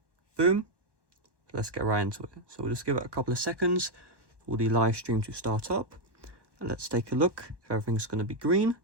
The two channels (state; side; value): late; left; 1.1 ms